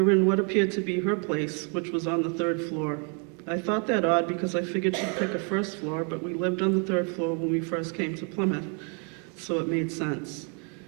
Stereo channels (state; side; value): quieter; left; 38.8 dB